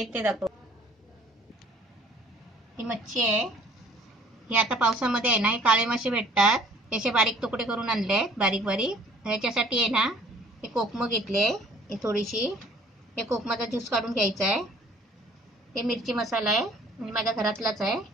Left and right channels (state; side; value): normal; both; correlation 0.55